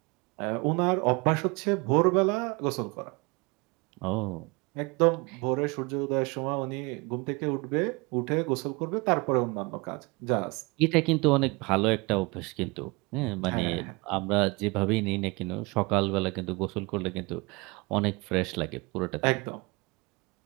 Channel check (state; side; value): quieter; left; 26.9 dB